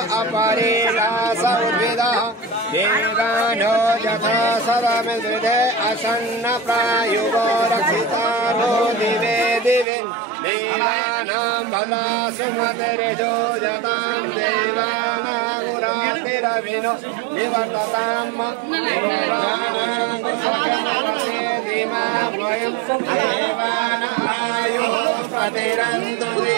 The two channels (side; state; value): left; drops out; at 9.9 s